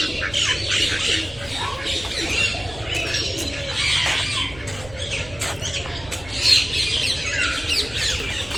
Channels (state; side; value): noise; right; rumble, 17 dB below the sound